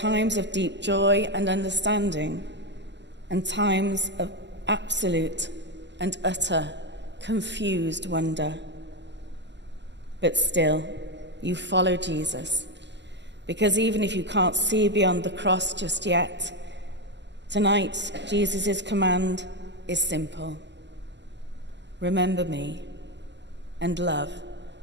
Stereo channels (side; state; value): left; late; 0.51 ms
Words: of deep joy and understanding, and times of absolute and utter confused wonder. But still, you follow Jesus, because even if you can't see beyond the cross just yet, tonight Jesus' command is simple. Remember me and love